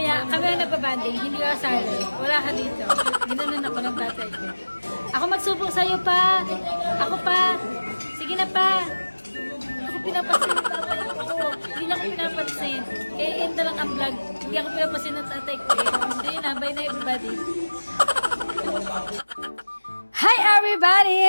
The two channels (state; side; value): inverted; both; correlation -1.00